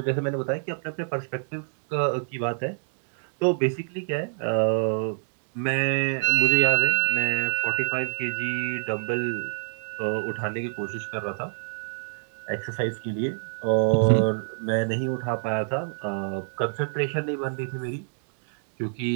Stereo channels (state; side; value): silent; left; digital silence